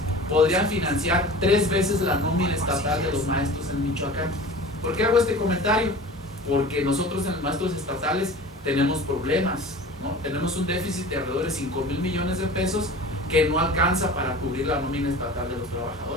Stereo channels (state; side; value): normal; both; correlation 0.38